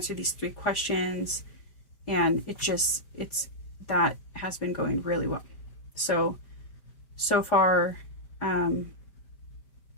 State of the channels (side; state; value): right; late; 5.1 ms